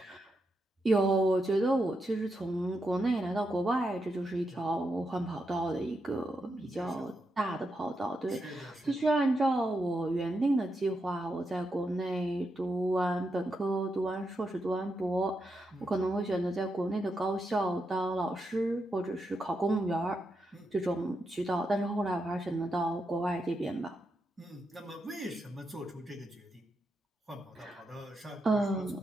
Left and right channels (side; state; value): both; normal; correlation 0.84